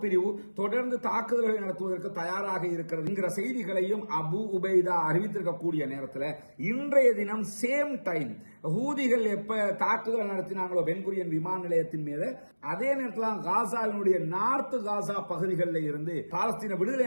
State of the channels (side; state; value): both; inverted; correlation -1.00